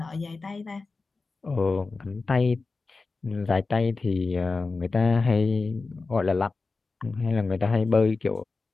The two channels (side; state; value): right; quieter; 3.9 dB